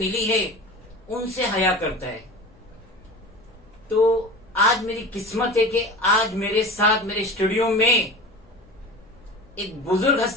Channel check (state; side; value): noise; left; hum, 29 dB below the sound